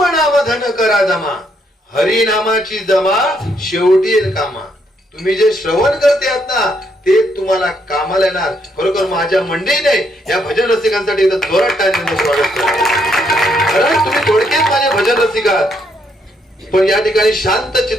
नाम धन करा जमा. हरिनामाची जमा शेवटी येईल कामा. तुम्ही जे श्रवण करते आहात ना ते तुम्हाला कामाला येणार. खरोखर माझ्या मंडळीने या भजन रसिकांसाठी एकदा जोरात टाळ्यांचं स्वागत करा. कारण तुम्ही थोडक्यात माझे भजन रसिक आहात, पण या ठिकाणी शांत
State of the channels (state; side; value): normal; both; correlation 0.74